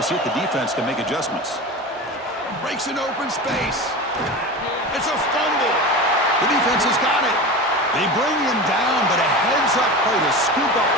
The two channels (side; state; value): both; normal; correlation 0.29